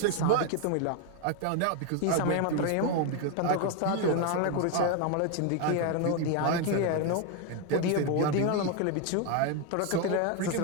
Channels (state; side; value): different; both; correlation 0.01